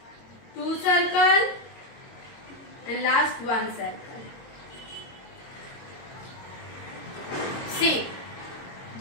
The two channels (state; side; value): late; right; 22 ms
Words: 2 circle, and last 1 circle. See,